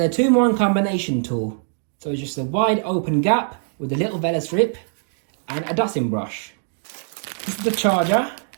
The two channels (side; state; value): left; silent; digital silence